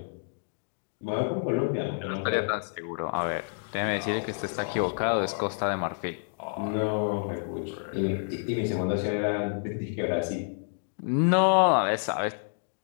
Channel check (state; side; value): silent; right; digital silence